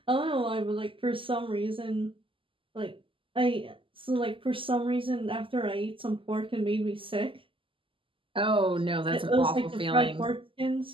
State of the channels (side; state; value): left; late; 0.25 ms